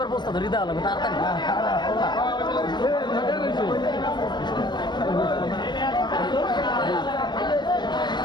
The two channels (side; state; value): right; late; 0.22 ms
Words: বস্তা ধরি দেওয়া লাগবে তাড়াতাড়ি